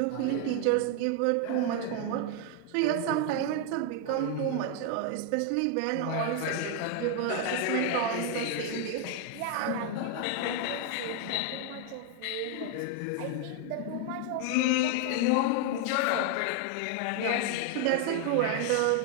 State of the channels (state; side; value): different; both; correlation 0.01